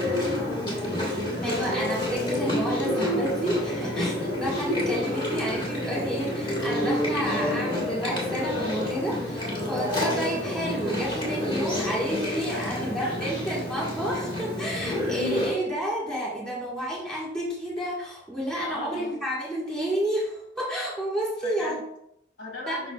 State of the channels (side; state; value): both; normal; correlation 0.50